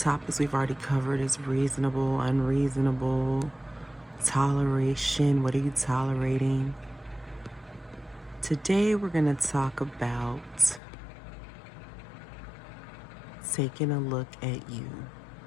we've already covered is reasonable, unreasonable, toleration. What are you tolerating? Today we're going to talk about taking a look at you.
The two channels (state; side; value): drops out; right; at 10.8 s